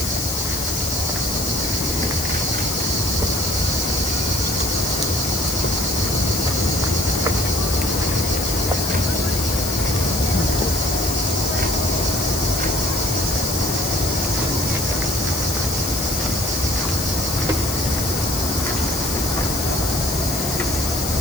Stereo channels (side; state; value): left; noise; hiss, 4 dB below the sound